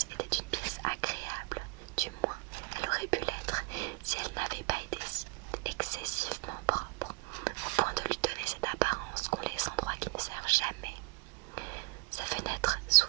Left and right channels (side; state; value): left; quieter; 28.0 dB